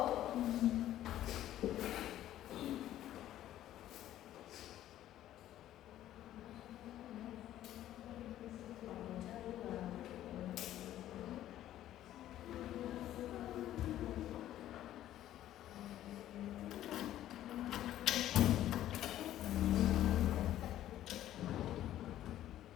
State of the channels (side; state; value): right; quieter; 12.8 dB